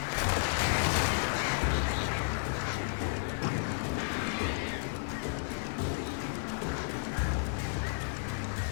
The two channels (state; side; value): silent; right; digital silence